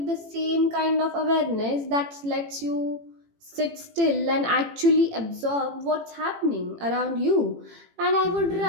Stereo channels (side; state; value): left; late; 18 ms